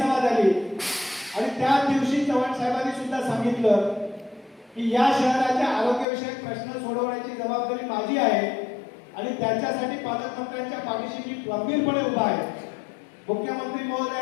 झाली आणि त्या दिवशी चव्हाण साहेबांनी सुद्धा सांगितलं की या शहराच्या आरोग्यविषयक प्रश्न सोडवण्याची जबाबदारी माझी आहे आणि त्याच्यासाठी पालकमंत्र्यांच्या पाठीशी मी गंभीरपणे उभा आहे. मुख्यमंत्री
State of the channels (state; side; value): drops out; right; at 6.1 s